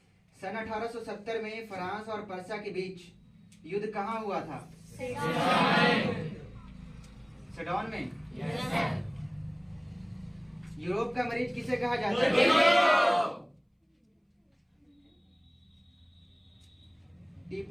सन 1870 में फ्रांस और पर्शिया के बीच युद्ध कहाँ हुआ था? सेडोन में। यूरोप का मरीज किसे कहा जाता है?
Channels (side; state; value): both; identical; correlation 1.00